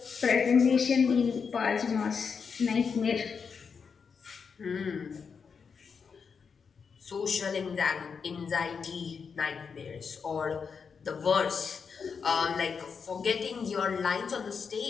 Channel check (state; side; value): quieter; right; 5.9 dB